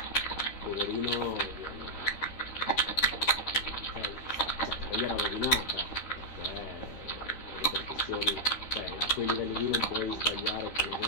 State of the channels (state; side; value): late; right; 13 ms